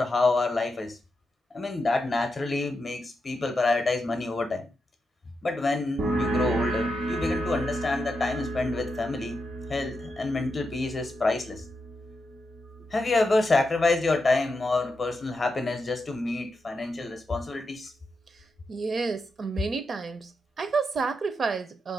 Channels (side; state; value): both; normal; correlation 0.86